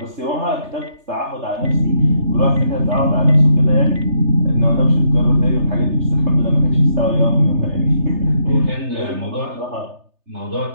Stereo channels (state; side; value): late; left; 3.3 ms